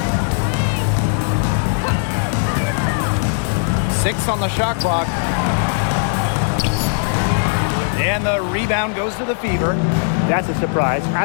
6 on the shot clock. And the rebound goes to the Fever. That's a surprise.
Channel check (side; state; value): right; silent; 57 dB below the other